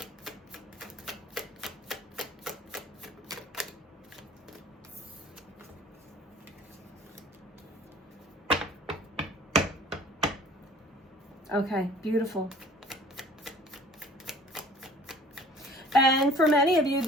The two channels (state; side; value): normal; both; correlation 0.49